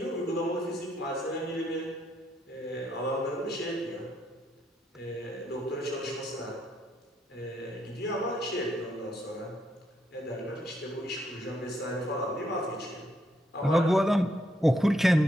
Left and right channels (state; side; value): normal; both; correlation 0.75